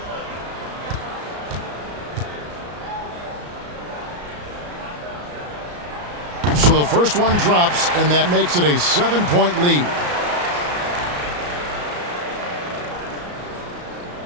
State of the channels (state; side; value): late; left; 34 ms